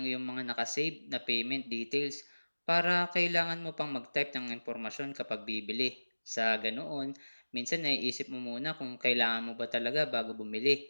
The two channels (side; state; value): both; inverted; correlation -1.00